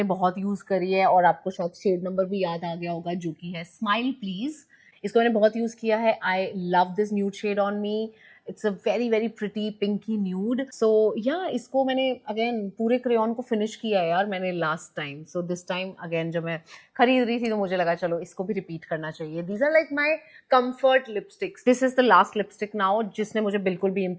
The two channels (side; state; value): both; identical; correlation 1.00